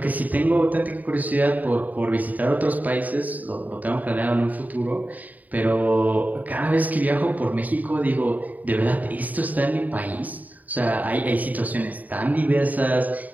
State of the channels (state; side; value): late; left; 0.077 ms